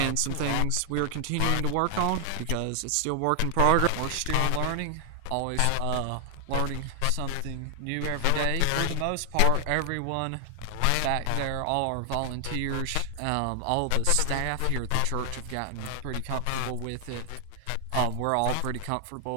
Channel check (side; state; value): both; different; correlation 0.00